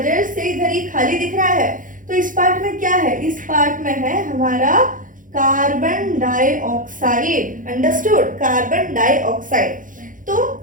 से इधर ये खाली दिख रहा है। तो इस पार्ट में क्या है, इस पार्ट में है हमारा carbon dioxide. Understood? Carbon dioxide.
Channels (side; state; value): left; late; 0.39 ms